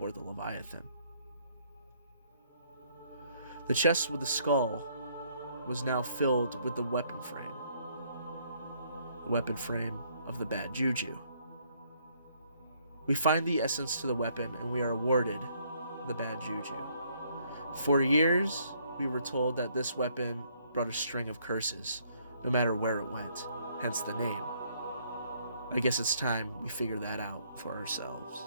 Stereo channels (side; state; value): both; inverted; correlation -0.67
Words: the Leviathan. The chest with the skull was now filled with the weapon frame of the bad Juju. We find the essence to the weapon, and we are awarded the bad Juju. For years, we were told that this weapon brought a string of curses, no matter where it went, hence the name. I guess it's time we figure that out for ourselves.